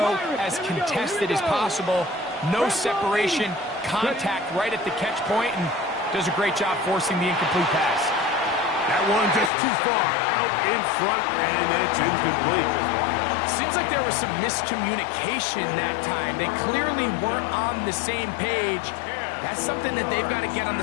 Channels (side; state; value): right; drops out; at 9.5 s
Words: as contested as possible. No separation, contact right at the catch point, and does a great job forcing the incomplete pass. That one just too far out in front, and it's incomplete. Seems like there was some miscommunication that time. They clearly weren't on the same page. That's something that they've got to get on the